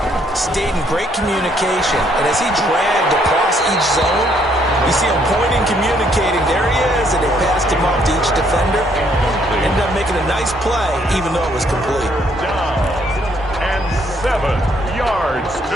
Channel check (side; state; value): both; normal; correlation 0.68